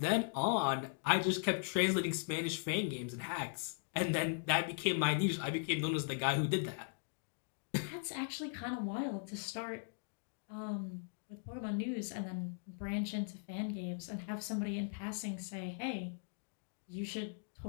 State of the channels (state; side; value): silent; right; digital silence